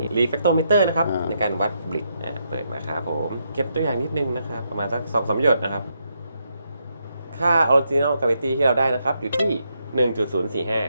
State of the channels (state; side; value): inverted; both; correlation -0.80